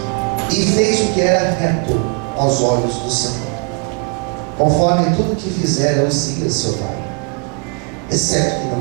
E fez o que era reto aos olhos do Senhor, conforme tudo que fizera Uzias seu pai, exceto que não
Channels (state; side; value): quieter; left; 33.8 dB